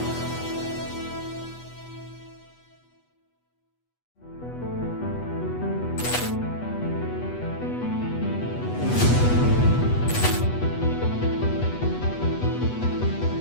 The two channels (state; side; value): late; right; 8.2 ms